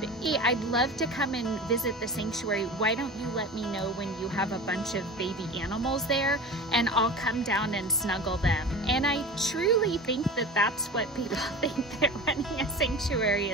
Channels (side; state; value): both; normal; correlation 0.33